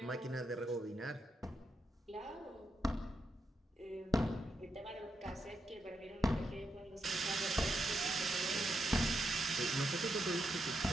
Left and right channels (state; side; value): normal; both; correlation 0.84